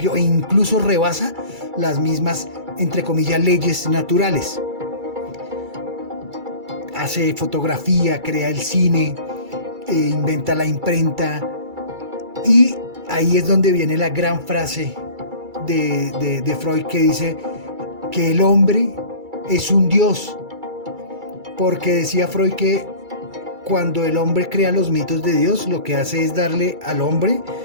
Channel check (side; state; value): left; late; 2.3 ms